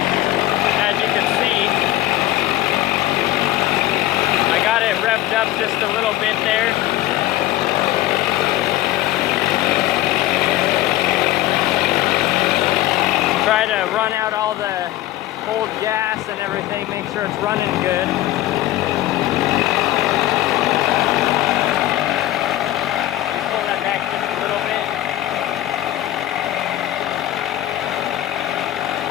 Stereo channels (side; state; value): right; quieter; 15.0 dB